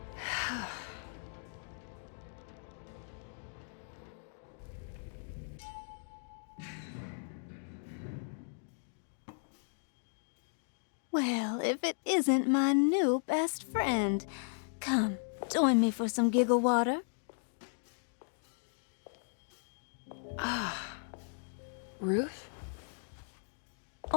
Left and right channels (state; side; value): silent; right; digital silence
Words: Well, if it isn't my new best friend. Come, join me for some giggle water. Ruth?